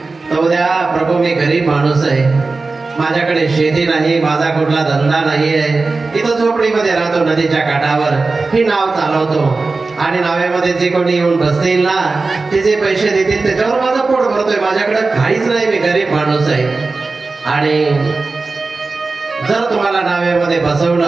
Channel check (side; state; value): left; quieter; 3.8 dB